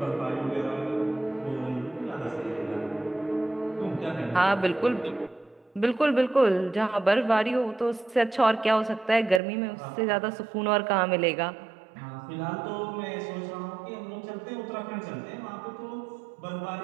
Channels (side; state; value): left; drops out; at 9.4 s